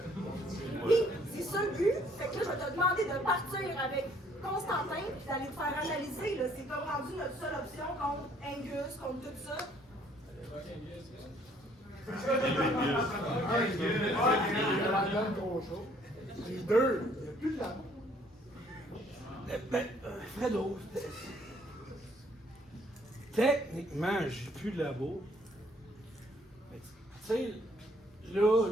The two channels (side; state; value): both; normal; correlation 0.63